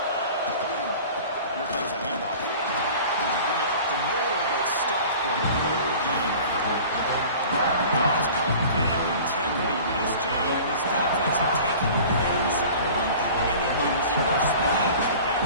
Here comes a handoff. Bring it up the middle, but stuffed for no gain. It's called gap integrity. Nice job by this defense of taking away that inside run and then using their speed as the back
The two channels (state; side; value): inverted; both; correlation -0.42